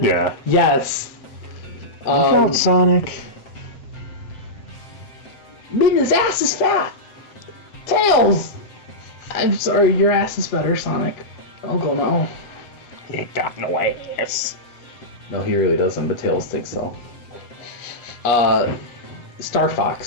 Yeah. Yes. Look out, Sonic. Midna's ass is fat. Tails. I'm sorry, your ass is better, Sonic. I'll go now. He ain't got no ass. No, he really doesn't, but Tails thinks so. Star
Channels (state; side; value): late; right; 8.3 ms